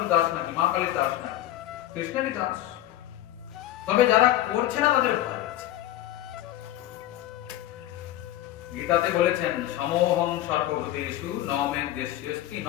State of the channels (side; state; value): right; quieter; 14.0 dB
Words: দাস নাকি, মা কালীর দাস নাকি? কৃষ্ণেরই দাস। তবে যারা করছে না তাদের ভয় আছে। গীতাতে বলেছেন, সমোহং সর্বভূতেষু ন মে দ্বেষ্যস্তি